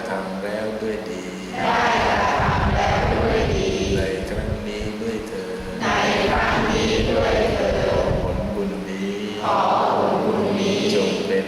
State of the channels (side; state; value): both; identical; correlation 1.00